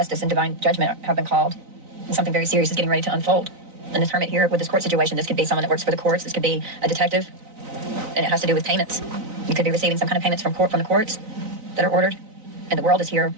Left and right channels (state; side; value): late; left; 3.9 ms